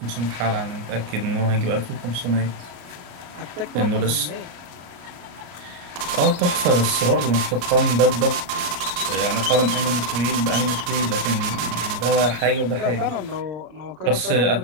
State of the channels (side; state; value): left; late; 34 ms